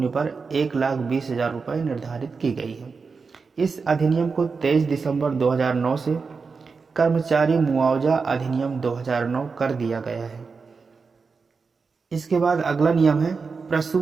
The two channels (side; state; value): left; quieter; 4.9 dB